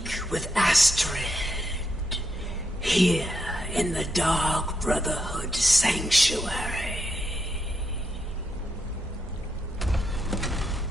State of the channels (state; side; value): normal; both; correlation 0.81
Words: with Astrid. Here in the Dark Brotherhood Sanctuary.